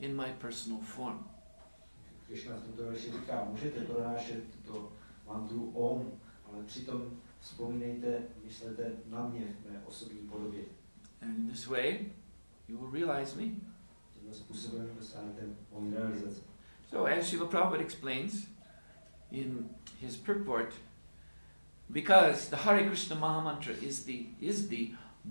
my personal form. Krishna v tomto verši říká, můžete pronášet tuto mantru Om, ale přitom Vzpomínejte, myslete na mě v mé osobní podobě. And in this way, you will realize me. Tímto způsobem dosáhnete mojí realizace. So as Srila Prabhupada explains in his purport, because the Hare Krishna Maha Mantra is the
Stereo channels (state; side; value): inverted; both; correlation -1.00